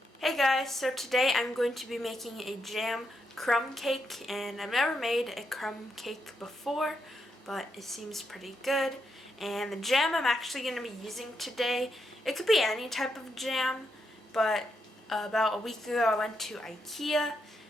Hey guys, so today I'm going to be making a jam crumb cake, and I've never made a crumb cake before, but it seems pretty good. And the jam I'm actually going to be using today, it could be any type of jam, but about a week ago I went to Ikea,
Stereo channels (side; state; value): both; normal; correlation 0.82